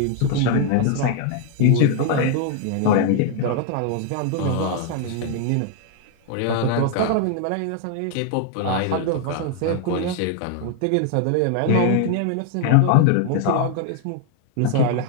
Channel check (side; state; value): both; different; correlation 0.00